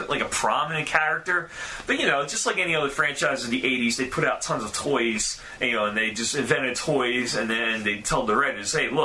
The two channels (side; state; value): both; identical; correlation 1.00